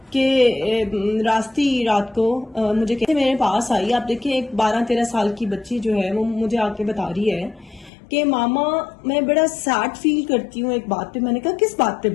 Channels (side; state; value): right; drops out; at 7.9 s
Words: کہ رات کو مجھے کہتے میرے پاس آئی. آپ دیکھیں ایک 12-13 سال کی بچی جو ہے وہ مجھے آ کے بتا رہی ہے کہ ماما میں بڑا سیڈ فیل کرتی ہوں ایک بات پہ. میں نے کہا کس بات پہ